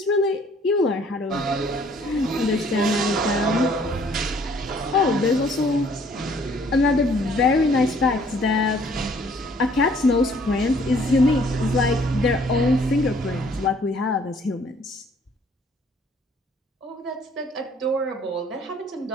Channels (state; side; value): normal; both; correlation 0.60